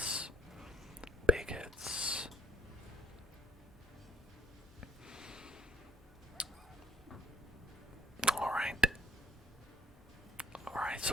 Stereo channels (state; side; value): normal; both; correlation 0.66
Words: big hits. Alright. Alright,